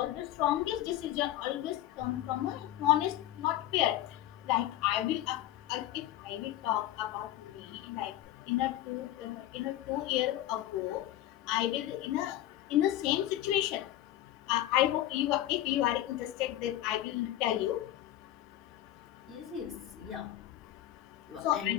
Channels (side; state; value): right; quieter; 13.7 dB